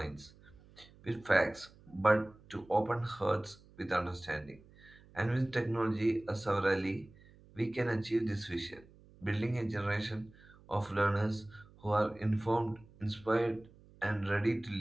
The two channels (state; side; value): noise; right; hum, 25 dB below the sound